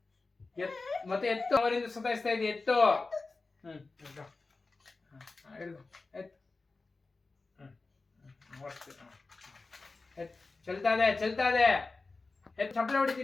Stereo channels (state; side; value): quieter; right; 3.8 dB